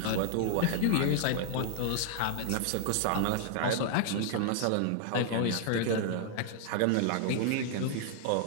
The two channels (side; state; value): both; different; correlation 0.00